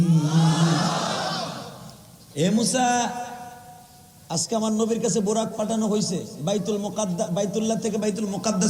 এ মুসা, আজকে আমার নবীর কাছে বোরাক পাঠানো হয়েছে, বাইতুল্লাহ থেকে বাইতুল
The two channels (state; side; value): identical; both; correlation 1.00